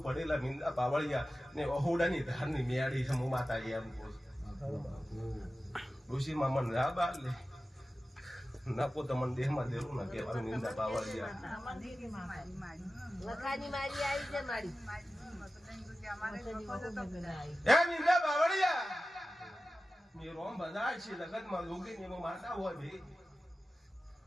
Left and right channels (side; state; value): both; normal; correlation 0.95